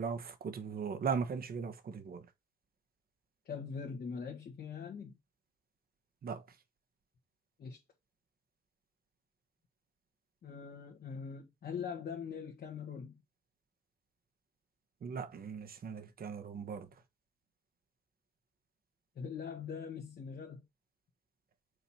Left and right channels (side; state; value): both; normal; correlation 0.38